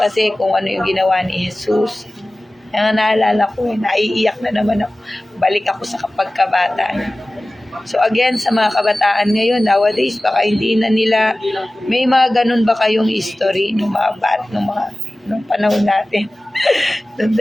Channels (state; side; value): normal; both; correlation 0.97